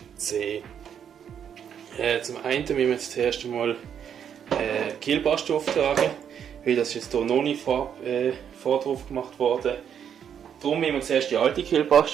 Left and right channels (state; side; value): quieter; left; 8.4 dB